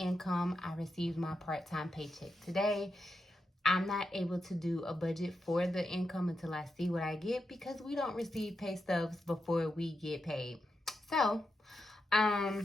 I received my part-time paycheck today. I'm not able to do a budget for the income until I see what I get because we don't receive pay stubs before we get paid. So,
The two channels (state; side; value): normal; both; correlation 0.86